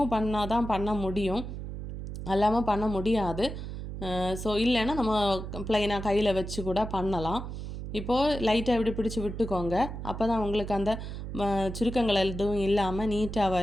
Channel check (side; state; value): right; noise; hum, 7 dB below the sound